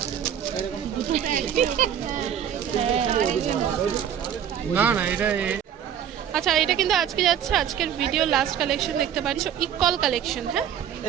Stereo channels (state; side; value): quieter; left; 9.2 dB